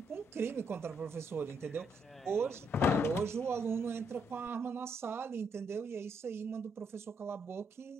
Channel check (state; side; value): normal; both; correlation 0.75